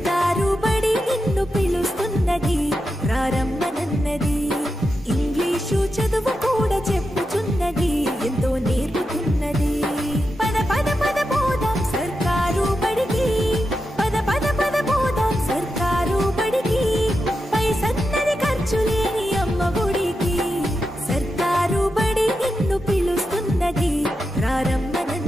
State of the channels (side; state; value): both; normal; correlation 0.88